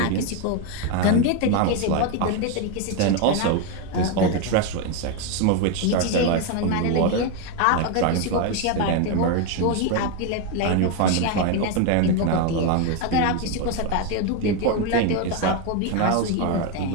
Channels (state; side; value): different; both; correlation 0.02